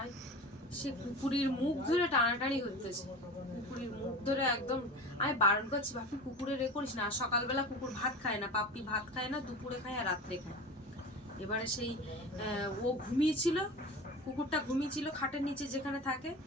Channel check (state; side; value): normal; both; correlation 0.32